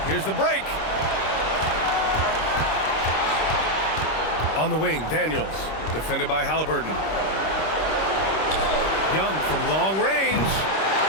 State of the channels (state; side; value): late; right; 26 ms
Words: Here's the break. On the wing, Daniels, defended by Halliburton. Young from long range.